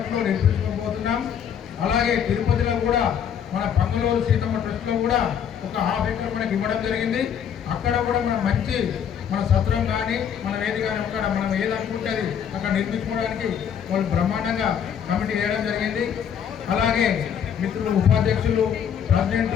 నిర్మించుకోబోతున్నాం. అలాగే తిరుపతిలో కూడా మన పంగలూరు సీతమ్మ ట్రస్ట్లో కూడా ఒక ½ ఎకర్ మనకి ఇవ్వడం జరిగింది. అక్కడ కూడా మనం మంచి మన సత్రం కానీ మన వేది కానీ అక్కడ మనం ఏదనుకుంటే అది అక్కడ నిర్మించుకోవడానికి వాళ్ళు బ్రహ్మాండంగా కమిటీ వేయడం జరిగింది. అలాగే మిత్రులు ఉపాధ్యక్షులు ప్రెసిడెంట్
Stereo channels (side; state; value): right; quieter; 8.3 dB